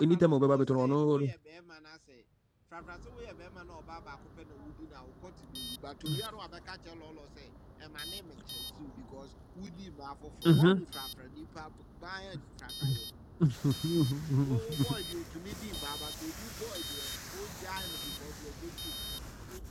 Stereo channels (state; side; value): identical; both; correlation 1.00